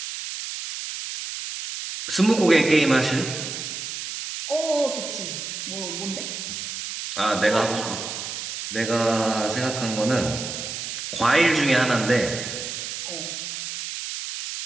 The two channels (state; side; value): noise; right; hiss, 6 dB below the sound